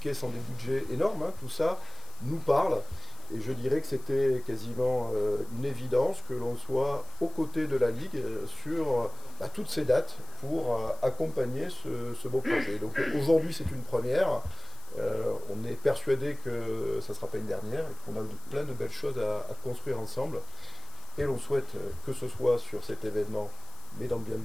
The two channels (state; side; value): noise; left; hiss, 22 dB below the sound